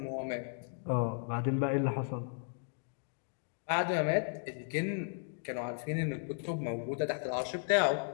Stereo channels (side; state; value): right; silent; digital silence